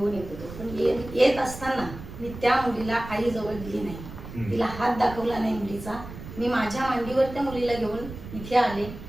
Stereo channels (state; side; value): noise; right; rumble, 12 dB below the sound